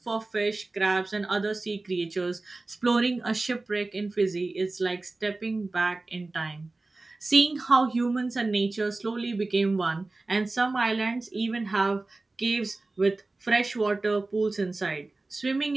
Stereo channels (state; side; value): quieter; left; 3.2 dB